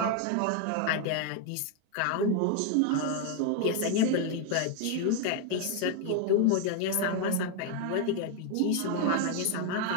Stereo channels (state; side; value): different; both; correlation 0.00